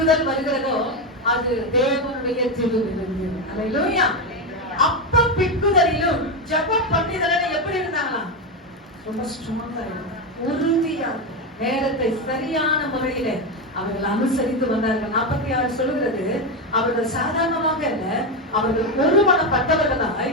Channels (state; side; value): normal; both; correlation 0.11